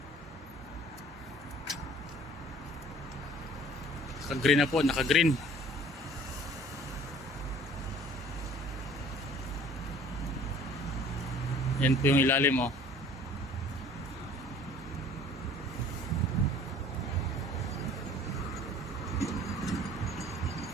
Naka-green na po, naka-green. Yan po yung ilalim oh.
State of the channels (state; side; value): normal; both; correlation 0.50